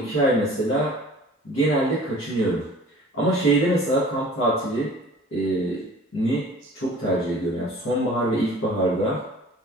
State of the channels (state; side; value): normal; both; correlation 0.47